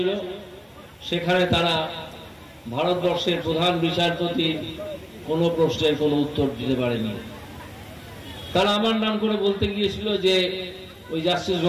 সেখানে তারা ভারতবর্ষের প্রধান বিচারপতি কোনো প্রশ্নের কোনো উত্তর দিতে পারেনি। তারা আমার নাম করে বলতে গিয়েছিল যে ওই জাস্টিস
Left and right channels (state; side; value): identical; both; correlation 1.00